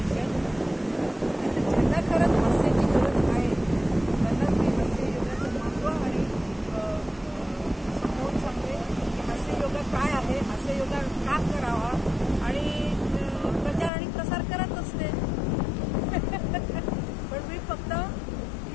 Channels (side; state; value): right; drops out; at 13.9 s